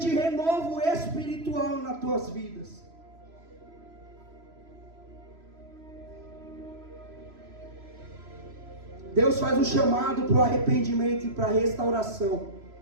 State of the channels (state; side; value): late; left; 3.0 ms